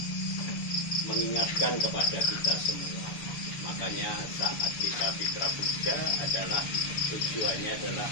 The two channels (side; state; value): right; late; 7.0 ms